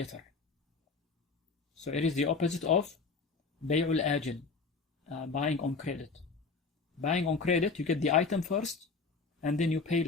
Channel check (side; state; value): right; quieter; 4.4 dB